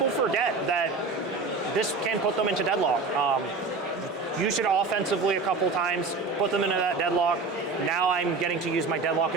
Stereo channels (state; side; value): quieter; left; 4.0 dB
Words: forget that this can put them into deadlock. Use it offensively a couple times, put them into that deadlock. Now I'm getting to use my deadlock